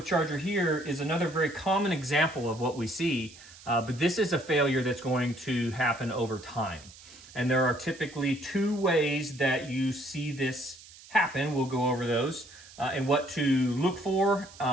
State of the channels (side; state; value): right; noise; hiss, 20 dB below the sound